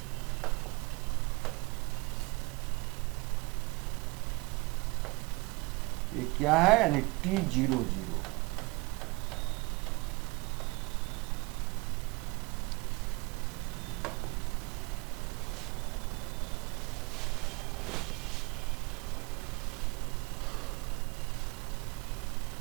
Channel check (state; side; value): quieter; left; 26.5 dB